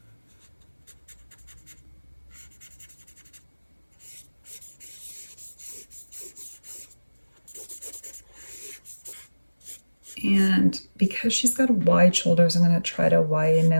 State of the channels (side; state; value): both; inverted; correlation -1.00